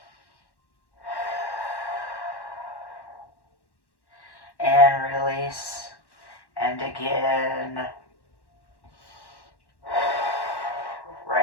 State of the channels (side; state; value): right; late; 1.1 ms